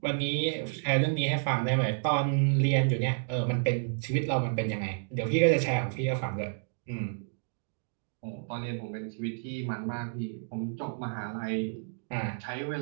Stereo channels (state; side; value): silent; left; digital silence